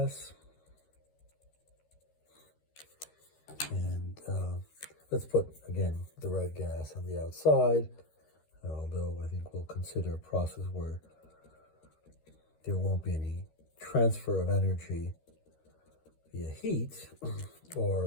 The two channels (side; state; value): right; late; 13 ms